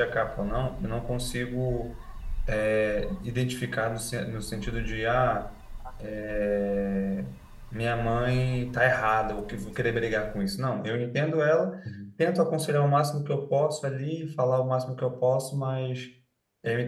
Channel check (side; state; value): both; identical; correlation 1.00